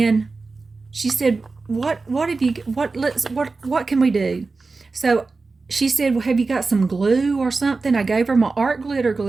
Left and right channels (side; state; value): left; quieter; 3.9 dB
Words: she said, what can we do? So she said, well, have you got some glue or something? I gave her my art glitter